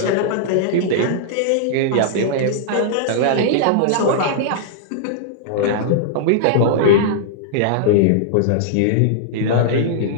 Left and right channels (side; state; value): both; different; correlation -0.01